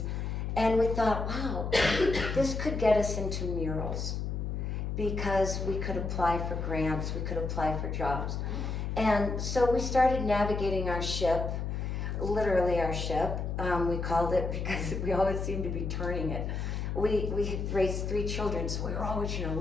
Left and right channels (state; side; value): noise; left; hum, 2 dB below the sound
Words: And we thought, wow, this could get us into murals because we could apply for grants, we could apply for jobs. And so we started navigating our ship, literally our ship. We called it because we always seemed to be turning it. We had raised 3 children, so we were always,